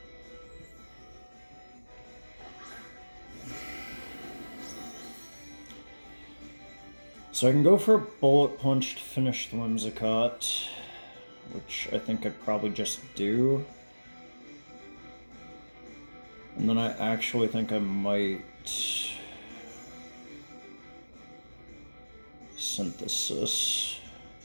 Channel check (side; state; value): both; inverted; correlation -1.00